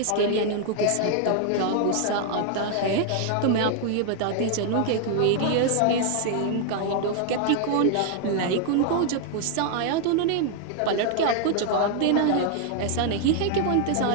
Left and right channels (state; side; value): different; both; correlation 0.00